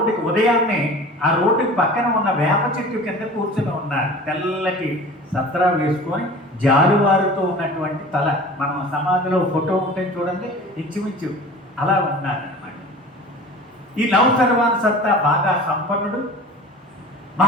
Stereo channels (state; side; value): normal; both; correlation 0.39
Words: ఉదయాన్నే ఆ రోడ్డుకి పక్కన ఉన్న వేప చెట్టు కింద కూర్చొని ఉన్నారు. తెల్లటి సత్రా వేసుకొని జారువారుతో ఉన్నటువంటి తల, మనం సమాధిలో ఫోటో ఉంటే చూడండి, ఇంచుమించు అలా ఉన్నారన్నమాట. ఈ నౌషర్వాన్ సత్తా బాగా సంపన్నుడు,